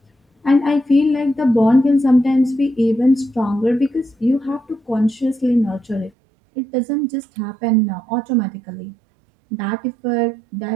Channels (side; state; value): left; drops out; at 6.1 s